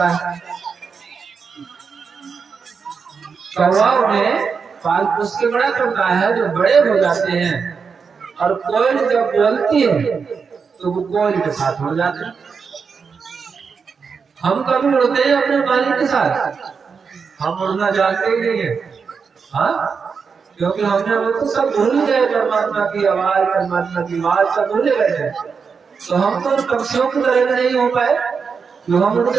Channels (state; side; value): quieter; left; 5.7 dB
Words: है, कौआ उन्हें पाल पोस के बड़ा करता है, जो बड़े हो जाते हैं और कोयल जब बोलती है तो वो कोयल के साथ उड़ जाते हैं। हम कभी उड़ते हैं अपने मालिक के साथ? हम उड़ना जानते ही नहीं है। हाँ, क्योंकि हमने वो तो सब भूल गए, परमात्मा की आवाज, परमात्मा की आवाज सब भूल गए। तो हम तो पक्षियों की तरह नहीं हो पाए जो हम